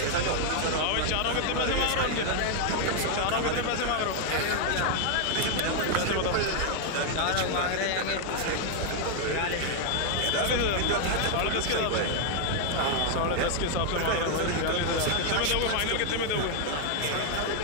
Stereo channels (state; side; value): different; both; correlation 0.00